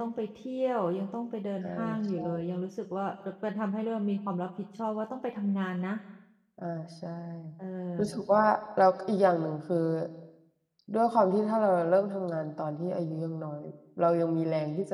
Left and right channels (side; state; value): both; identical; correlation 1.00